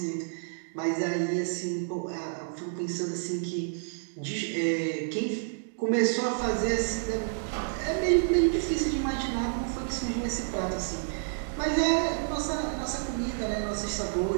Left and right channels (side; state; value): left; silent; digital silence